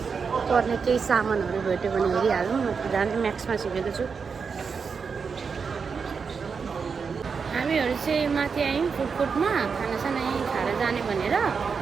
पर्ने केही सामानहरू भेट्यो भने हेरिहालौँ म त जाने म्याक्समा छिपेको छु हामीहरू चाहिँ माथि आयौँ फुडकोर्टमा खानासाना यहीँ खाएर जाने भनेर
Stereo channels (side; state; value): left; quieter; 5.6 dB